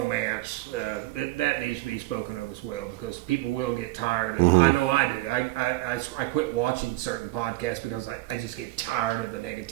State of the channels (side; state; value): left; quieter; 19.1 dB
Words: That needs to be spoken of as well, because people will get tired. And I know I do. I quit watching certain podcasts because I just get tired of the